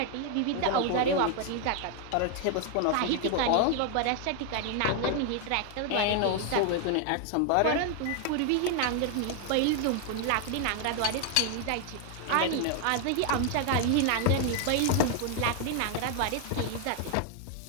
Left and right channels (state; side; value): different; both; correlation 0.00